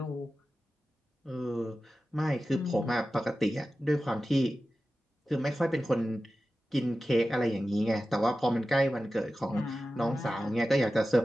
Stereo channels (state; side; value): normal; both; correlation 0.94